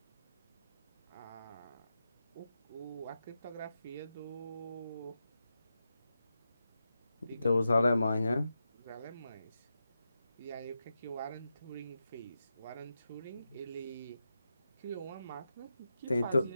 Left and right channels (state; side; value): inverted; both; correlation -0.88